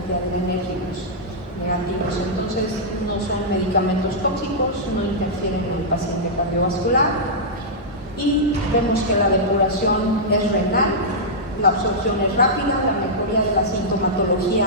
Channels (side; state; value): both; normal; correlation -0.11